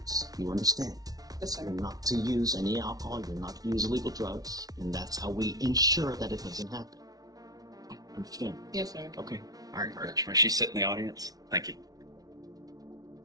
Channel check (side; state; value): left; late; 0.18 ms